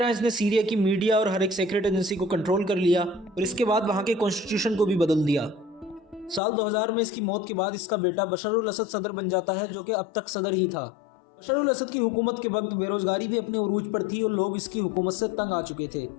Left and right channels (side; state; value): right; drops out; at 6.4 s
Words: इसने सीरिया की मीडिया और हर एक सीक्रेट एजेंसी को कंट्रोल कर लिया और इसके बाद वहां के कॉन्स्टिट्यूशन को भी बदल दिया। साल 2000 में इसकी मौत के बाद इसका बेटा बशर उल असद सदर बन जाता है, जो कि अब तक सदर ही था। बशर उल असद की हुकूमत के वक्त बेरोजगारी भी अपने उरूज पर थी और लोग इसकी हुकूमत से तंग आ चुके थे।